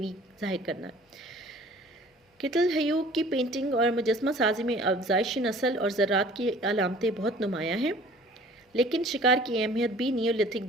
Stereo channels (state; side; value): normal; both; correlation 0.50